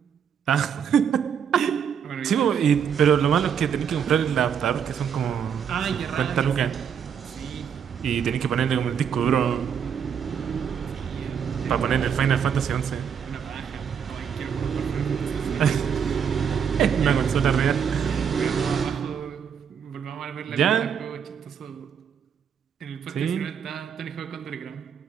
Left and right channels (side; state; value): left; quieter; 7.7 dB